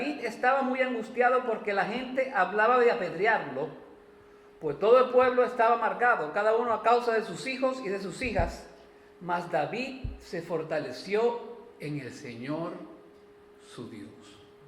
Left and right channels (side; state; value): both; identical; correlation 1.00